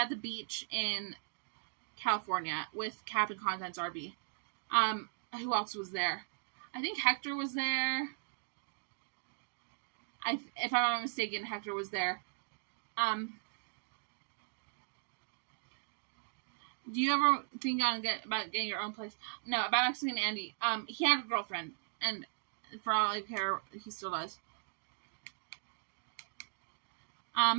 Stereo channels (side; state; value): left; silent; digital silence